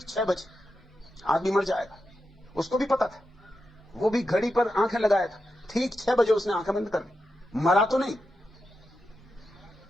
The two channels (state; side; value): normal; both; correlation 0.88